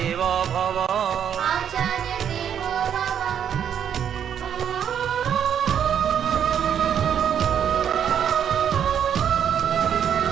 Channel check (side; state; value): left; quieter; 8.7 dB